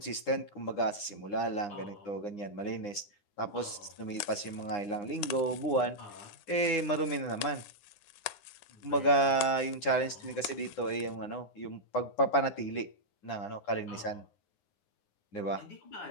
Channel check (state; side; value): late; right; 9.8 ms